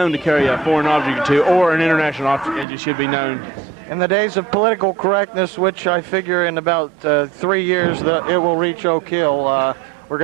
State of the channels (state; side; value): drops out; left; at 2.7 s